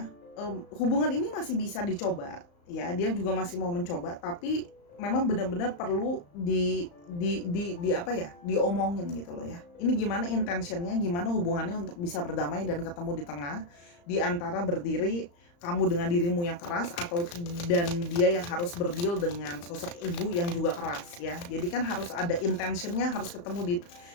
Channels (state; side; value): late; right; 35 ms